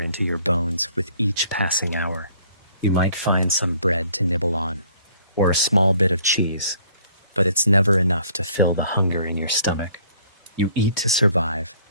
your bones with each passing hour. You might find some bread to nibble on, or a small bit of cheese, but it's never enough to fill the hunger in your stomach. You eat to survive,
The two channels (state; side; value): inverted; both; correlation -0.59